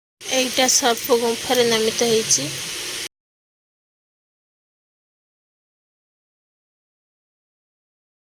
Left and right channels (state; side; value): identical; both; correlation 1.00